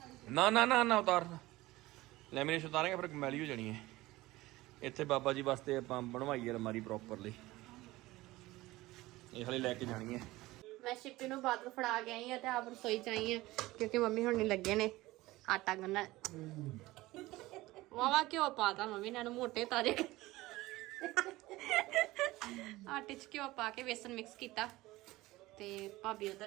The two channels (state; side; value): quieter; left; 18.7 dB